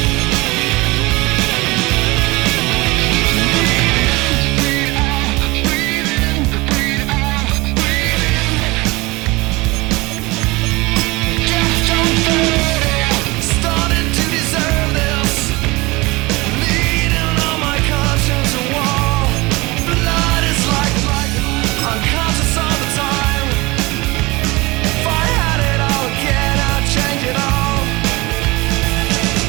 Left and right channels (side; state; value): left; quieter; 23.2 dB